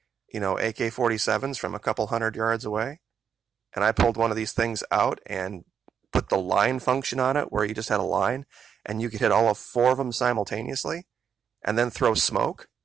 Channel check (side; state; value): left; quieter; 7.6 dB